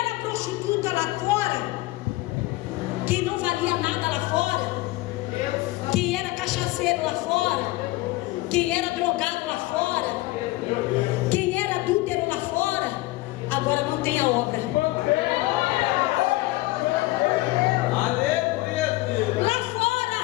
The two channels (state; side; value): quieter; right; 19.4 dB